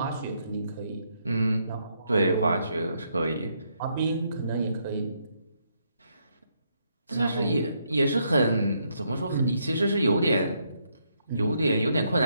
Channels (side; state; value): both; inverted; correlation -0.75